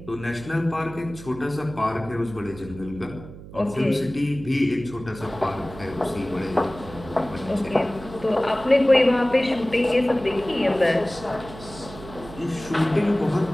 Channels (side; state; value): right; noise; hum, 15 dB below the sound